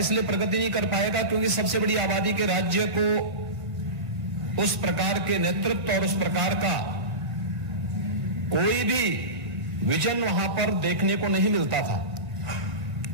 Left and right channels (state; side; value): late; left; 1.7 ms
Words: प्रगति नहीं कर पाएगा क्योंकि सबसे बड़ी आबादी के राज्य को उस प्रकार के नेतृत्व और उस प्रकार का कोई भी विजन वहां पर देखने को नहीं मिलता था।